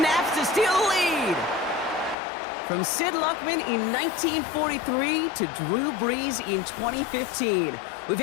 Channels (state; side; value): drops out; right; at 2.1 s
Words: to steal the lead. From Sid Luckman in 1943 to Drew Brees in 2015. We've